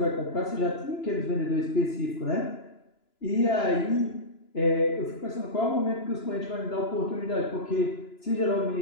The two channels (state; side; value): late; right; 2.9 ms